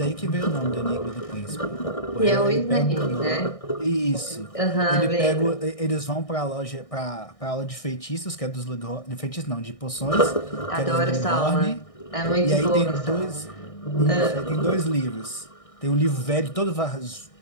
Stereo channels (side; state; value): right; late; 1.6 ms